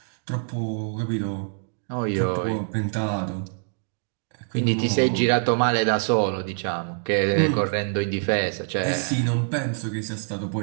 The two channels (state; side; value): silent; left; 62 dB below the other